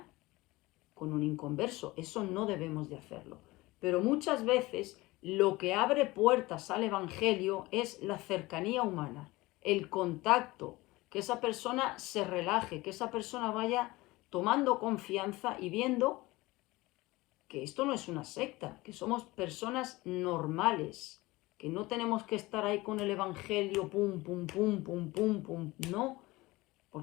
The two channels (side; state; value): right; quieter; 20.6 dB